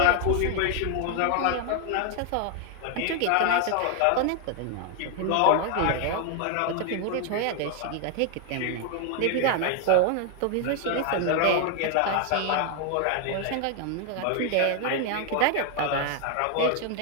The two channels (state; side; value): different; both; correlation 0.00